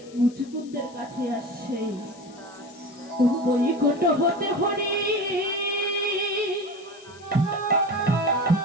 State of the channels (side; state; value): left; noise; hiss, 24 dB below the sound